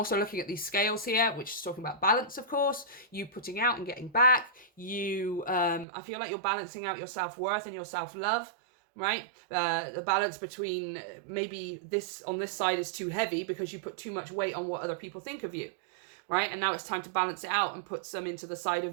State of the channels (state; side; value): drops out; left; at 5.9 s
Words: looking at these scales here, which is talking about balance, of course, you putting out and getting back. You I feel like you're balancing out your self-worth and your self-love, right? The balance between maybe this on this side is too heavy because you put too much weight on what other people think of you, right? And now it's time to balance it out and put some into the side